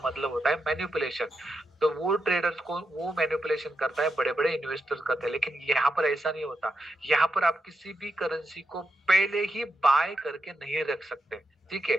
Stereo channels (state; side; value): normal; both; correlation 0.85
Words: मतलब होता है मैनिपुलेशन। तो वो ट्रेडर्स को वो मैनिपुलेशन करता है, बड़े बड़े इन्वेस्टर्स करते हैं। लेकिन यहाँ पर ऐसा नहीं होता। यहाँ पर आप किसी भी करेंसी को पहले ही बाय करके नहीं रख सकते, ठीक